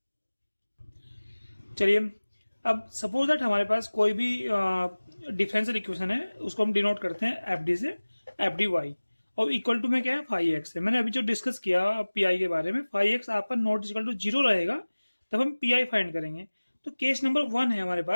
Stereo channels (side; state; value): both; inverted; correlation -1.00